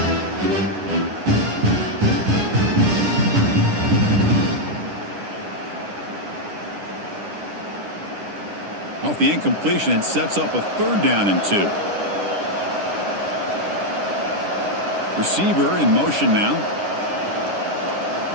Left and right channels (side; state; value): left; late; 9.9 ms